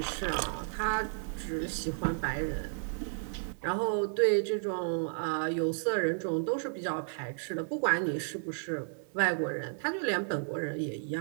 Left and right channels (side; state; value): left; silent; 56 dB below the other